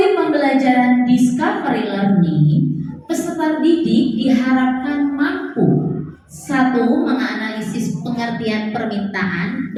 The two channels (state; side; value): identical; both; correlation 1.00